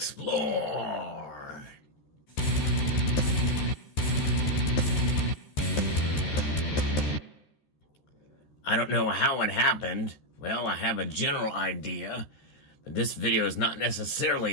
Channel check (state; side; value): late; right; 13 ms